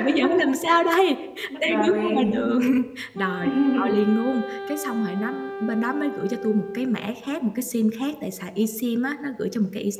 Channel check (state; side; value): identical; both; correlation 1.00